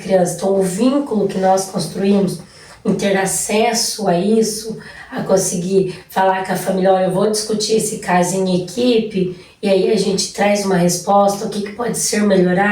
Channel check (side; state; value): both; identical; correlation 1.00